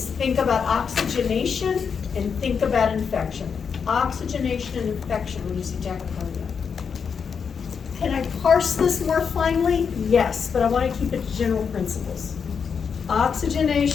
think about oxygenation and think about infection. Oxygenation and infection when you see tachycardia. Can I parse this more finely? Yes, but I want to keep it to general principles.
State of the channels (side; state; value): right; quieter; 6.3 dB